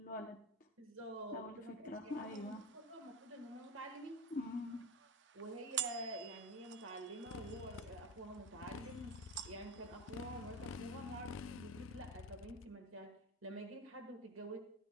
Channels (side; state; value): both; normal; correlation 0.22